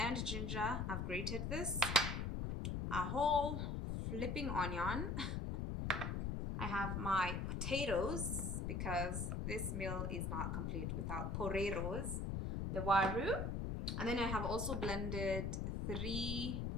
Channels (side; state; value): left; noise; rumble, 1 dB below the sound